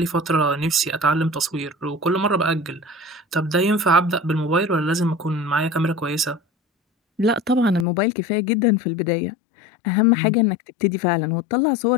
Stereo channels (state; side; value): drops out; right; at 7.9 s